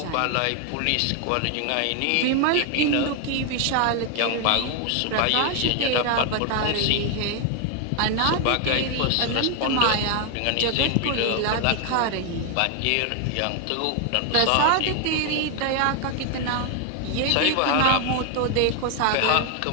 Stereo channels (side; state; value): both; different; correlation 0.00